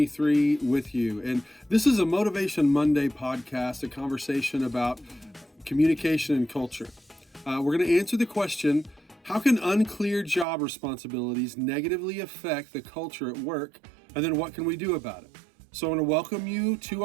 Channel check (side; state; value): left; drops out; at 10.5 s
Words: with you. And this is a Motivation Monday podcast, a conversation about communication and culture. We're going to answer the question, how can unclear job responsibilities negatively affect the culture at work? And then what can we do about it? So I want to welcome you to